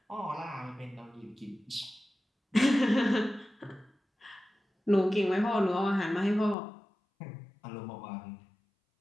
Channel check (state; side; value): drops out; right; at 6.6 s